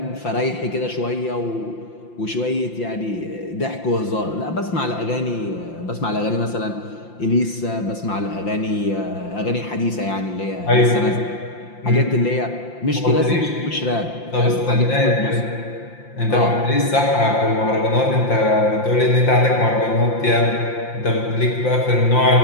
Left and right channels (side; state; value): right; late; 5.8 ms